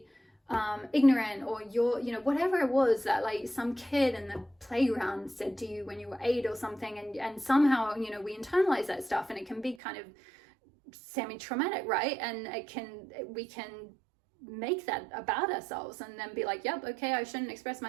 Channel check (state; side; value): drops out; left; at 9.8 s